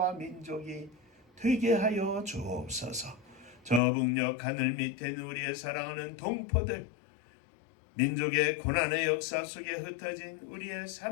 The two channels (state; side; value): drops out; right; at 3.8 s